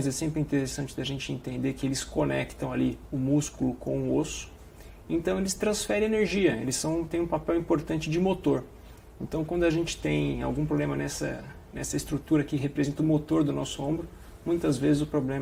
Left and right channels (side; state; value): both; identical; correlation 1.00